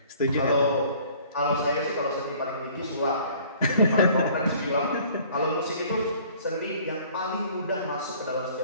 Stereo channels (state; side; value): inverted; both; correlation -0.54